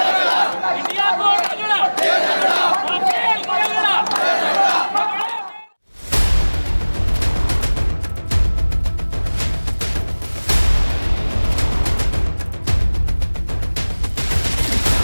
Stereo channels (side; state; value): both; inverted; correlation -1.00